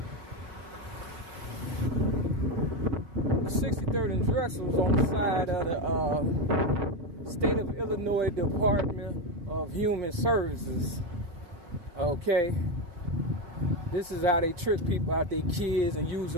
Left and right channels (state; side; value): late; left; 4.9 ms